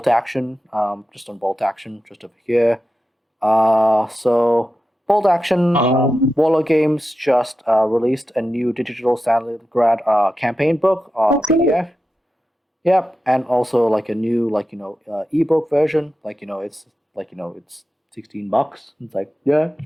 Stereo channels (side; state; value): both; normal; correlation 0.91